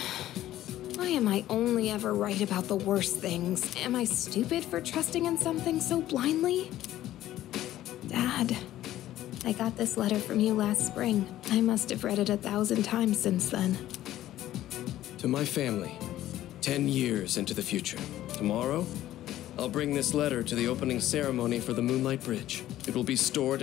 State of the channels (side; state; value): right; quieter; 13.7 dB